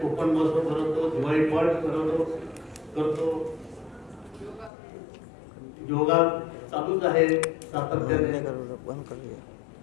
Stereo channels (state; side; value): drops out; right; at 4.7 s